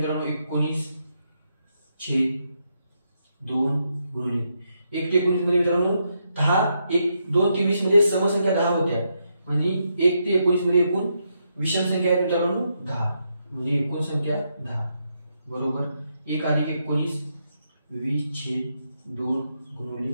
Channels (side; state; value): both; inverted; correlation -0.80